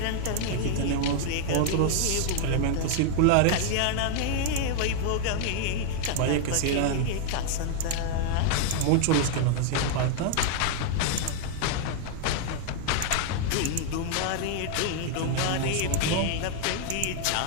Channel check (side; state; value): both; different; correlation 0.00